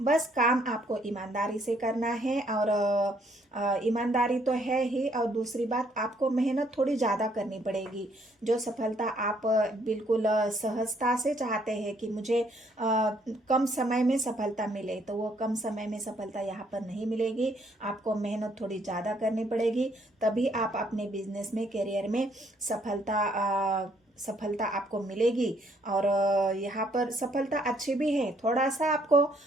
काम आपको ईमानदारी से करना है। और ईमानदारी तो है ही, और दूसरी बात आपको मेहनत थोड़ी ज़्यादा करनी पड़ेगी। जो सफलता आप बिल्कुल सहजता से चाहते हैं कि मुझे कम समय में सफलता मिले, तो वो कम समय में सफलता यहाँ पर नहीं मिलेगी, आपको मेहनत थोड़ी ज़्यादा करनी पड़ेगी, तभी आप अपने बिजनेस में, करियर में सफलता आपको मिलेगी। और यहाँ पर सफलता अच्छी भी है, थोड़ा सा आपको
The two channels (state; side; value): normal; both; correlation 0.68